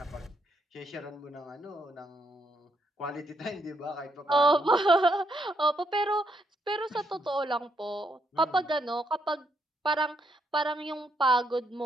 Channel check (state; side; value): normal; both; correlation 0.75